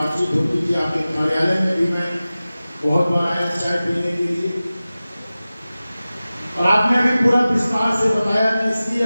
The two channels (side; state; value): both; inverted; correlation -0.96